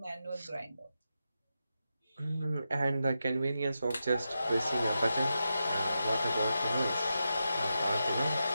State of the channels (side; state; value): both; inverted; correlation -0.88